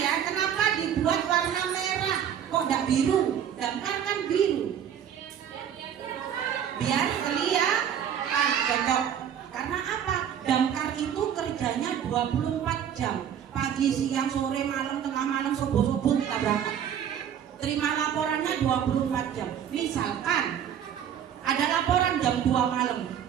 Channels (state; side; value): quieter; left; 9.1 dB